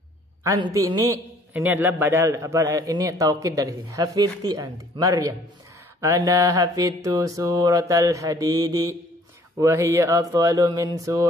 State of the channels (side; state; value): both; normal; correlation 0.58